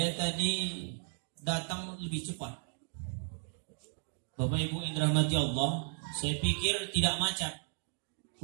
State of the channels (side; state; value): left; silent; 55 dB below the other